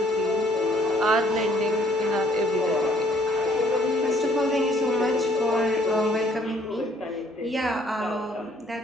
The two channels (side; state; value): both; normal; correlation 0.63